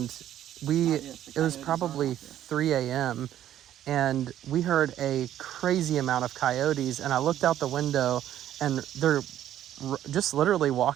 it was coyotes probably are out there. 3 a.m. and we heard a crazy amount of coyotes, and I looked out the window, and they're just literally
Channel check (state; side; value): quieter; left; 11.7 dB